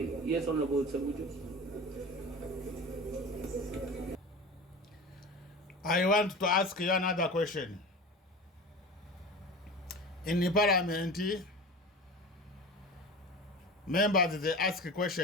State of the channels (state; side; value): normal; both; correlation 0.33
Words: Yes, Honorable Sabuju. I want to ask you another question. In the parliament, members, they ask a